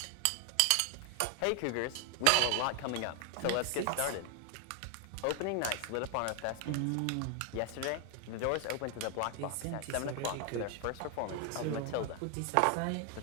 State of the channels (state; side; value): different; both; correlation 0.00